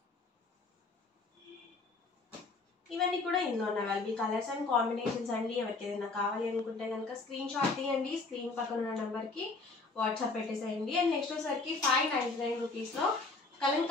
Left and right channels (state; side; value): quieter; right; 3.7 dB